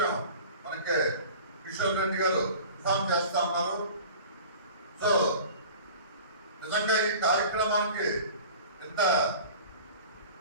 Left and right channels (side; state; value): both; inverted; correlation -0.41